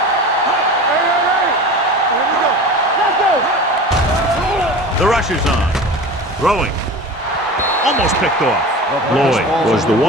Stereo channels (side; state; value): both; normal; correlation 0.34